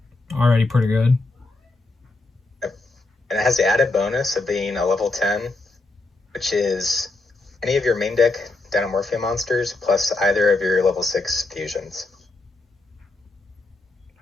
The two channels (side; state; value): right; quieter; 3.1 dB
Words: Already pretty good. And it has the added bonus of being a level 10, which is any of your main deck Dinomorphia monsters plus either of your level 6 fusions.